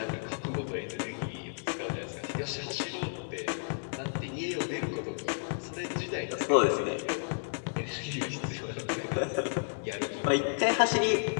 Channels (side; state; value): right; silent; digital silence